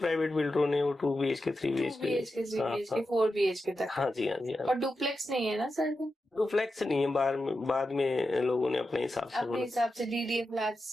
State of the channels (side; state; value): both; normal; correlation 0.90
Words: बिल्डरों ने वो 2 BHK 3 BHK 4 BHK तक। हाँ जी, हाँ जी। और डुप्लेक्स नहीं है ना सर? डुप्लेक्स नहीं है, बाद में लोगों ने अपने हिसाब से डीडीए